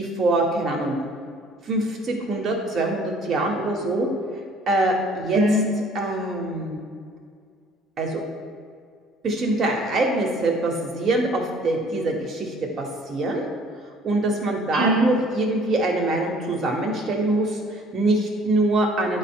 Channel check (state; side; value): normal; both; correlation 0.55